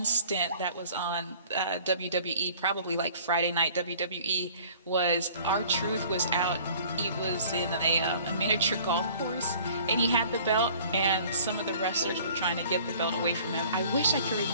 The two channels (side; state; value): both; inverted; correlation -0.50